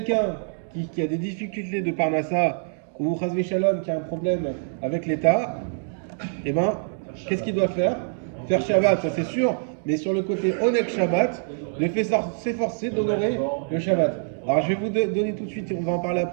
qui a des difficultés de Parnassa ou Chazvé Shalom qui a un problème avec l'État, eh ben, qu'est-ce qu'il doit faire? Faire Shabbat, ça c'est sûr. mais sur le côté Oneg Shabbat, de s'efforcer d'honorer le Shabbat. Alors je vais vous donner tout de suite, on va en parler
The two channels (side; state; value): left; silent; digital silence